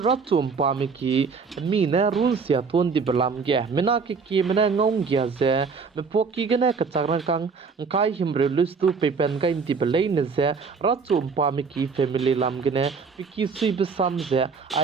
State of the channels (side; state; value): left; quieter; 5.2 dB